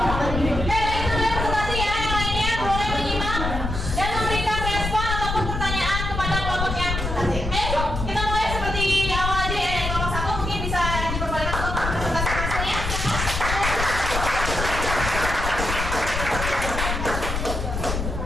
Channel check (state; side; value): noise; left; rumble, 3 dB below the sound